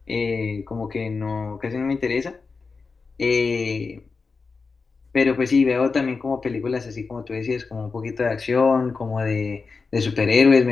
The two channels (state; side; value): quieter; right; 4.5 dB